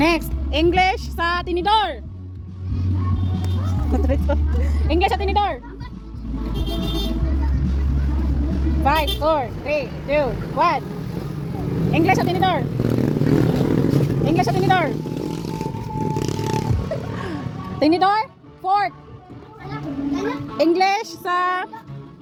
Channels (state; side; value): identical; both; correlation 1.00